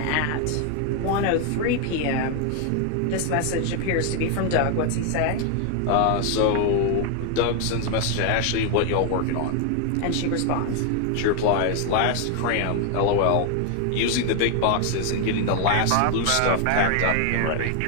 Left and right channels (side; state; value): both; different; correlation 0.00